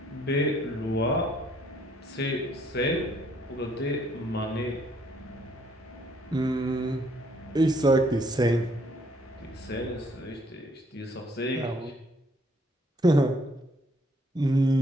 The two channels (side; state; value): both; normal; correlation 0.66